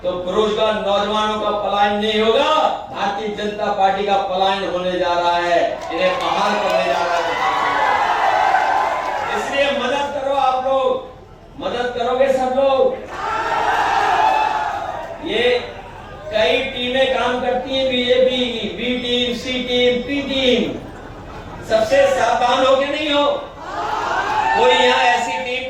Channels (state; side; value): identical; both; correlation 1.00